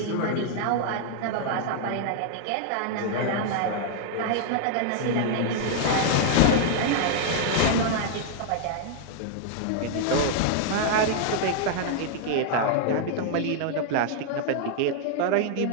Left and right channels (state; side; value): different; both; correlation -0.01